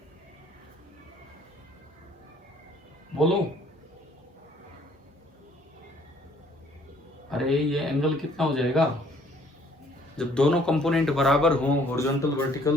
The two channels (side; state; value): both; normal; correlation 0.60